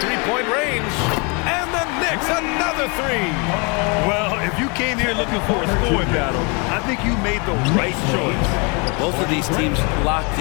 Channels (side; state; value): right; quieter; 31.7 dB